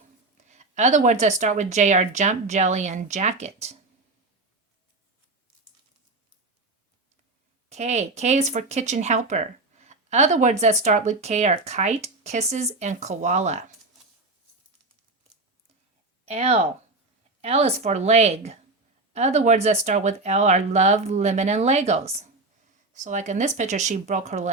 Other words that start with J are jump, jelly, and jacket. K is for kitchen helper. Other words that start with K are kite, kisses, and koala. L is for leg. Other words that start with L are love, lemon, and Legos. So like in this picture, she broke her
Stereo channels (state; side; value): quieter; left; 3.2 dB